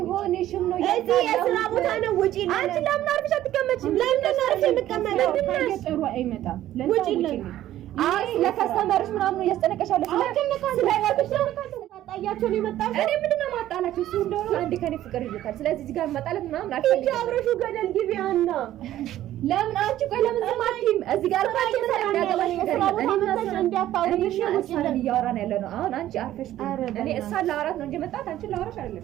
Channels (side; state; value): left; quieter; 13.3 dB